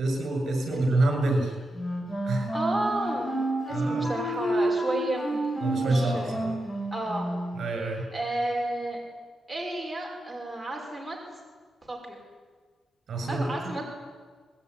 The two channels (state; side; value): normal; both; correlation 0.88